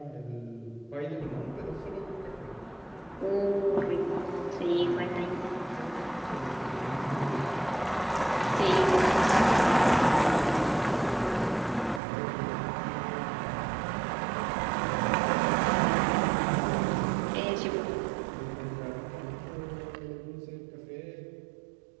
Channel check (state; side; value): drops out; left; at 12.0 s